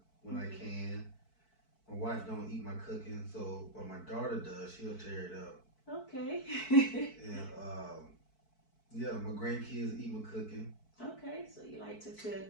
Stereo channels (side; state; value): right; late; 4.6 ms